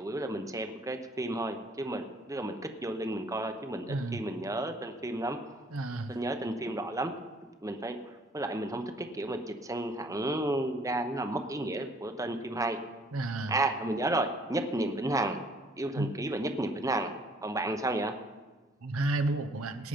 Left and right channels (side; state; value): both; normal; correlation 0.60